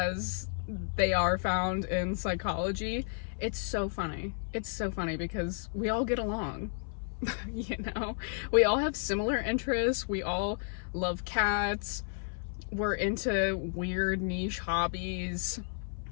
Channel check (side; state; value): right; silent; 56 dB below the other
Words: they are found in psychology. It's so funny. It's so funny because we all get along. You know, we all have similar interests. We all love cats. We're into weird niche hobbies.